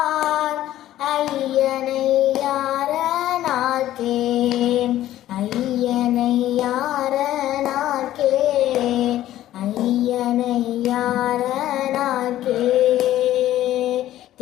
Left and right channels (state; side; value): quieter; right; 13.5 dB